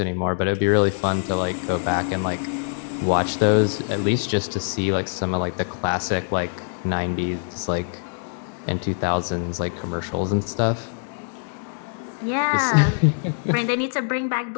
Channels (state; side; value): silent; right; digital silence